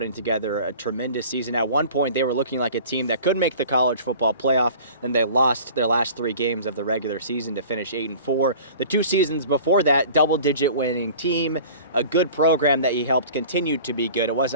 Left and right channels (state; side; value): inverted; both; correlation -0.43